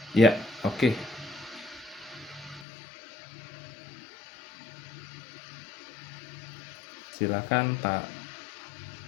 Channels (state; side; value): drops out; right; at 2.7 s